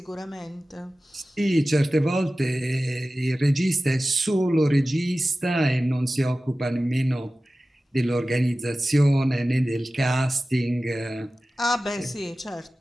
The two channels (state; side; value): normal; both; correlation 0.96